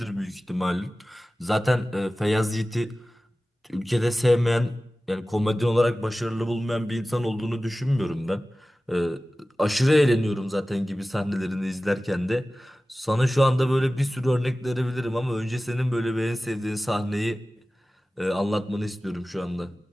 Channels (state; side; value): normal; both; correlation 0.96